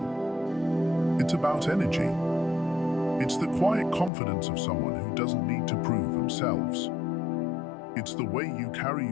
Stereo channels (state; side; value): drops out; right; at 4.1 s